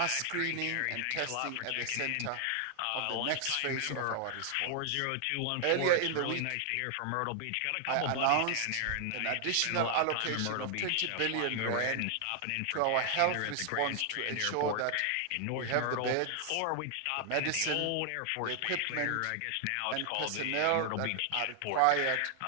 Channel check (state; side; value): different; both; correlation 0.00